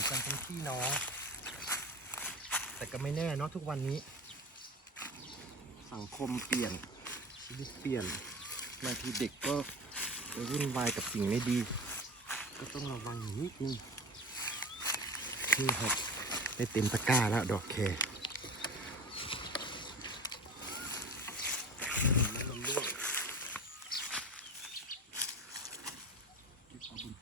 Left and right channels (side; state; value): both; normal; correlation 0.35